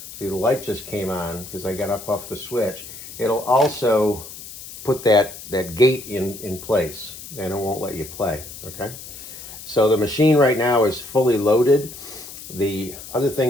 see the light just came on because I got up off the switch, it'll also put that gate in place and it won't let you play, okay? So the machine right now is fully loaded. The other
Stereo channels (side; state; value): left; noise; hiss, 14 dB below the sound